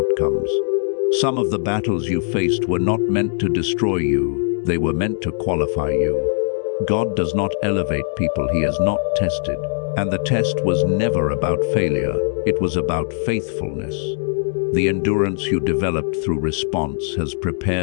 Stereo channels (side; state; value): right; silent; digital silence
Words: Some of the battles you faced were not meant to destroy you, they were meant to qualify you. God does not elevate people he has not tested, and the test was never about failure, it was about faithfulness. The endurance you developed through response has